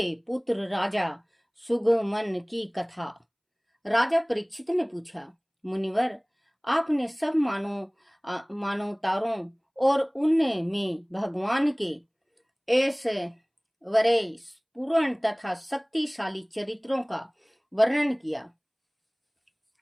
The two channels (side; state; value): both; identical; correlation 1.00